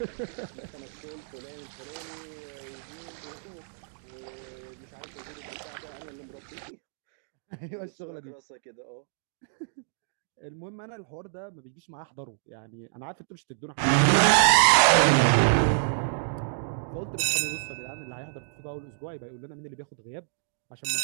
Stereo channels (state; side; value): silent; left; digital silence